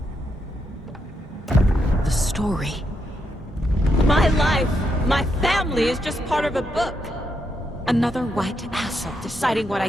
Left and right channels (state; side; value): normal; both; correlation 0.81